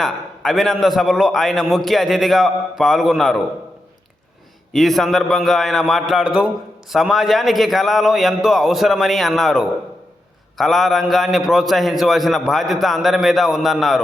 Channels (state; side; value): normal; both; correlation 0.86